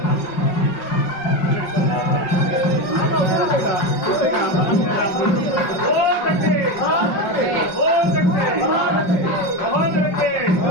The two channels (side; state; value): right; late; 5.5 ms